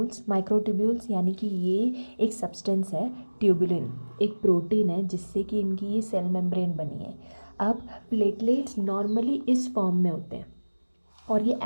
यानी कि ये एक सब्सटेंस है, ट्यूबुलिन एक प्रोटीन है जिससे कि इनकी ये सेल मेम्ब्रेन बनी है। अब प्लेटलेट्स नॉर्मली इस फॉर्म में होते हैं और ये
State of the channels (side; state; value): both; inverted; correlation -1.00